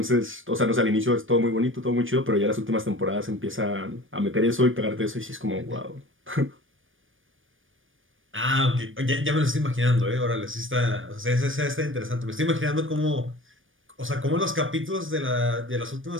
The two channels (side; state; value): left; late; 0.58 ms